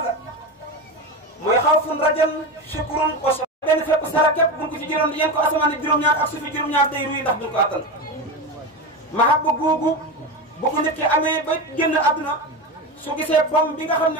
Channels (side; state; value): both; normal; correlation 0.20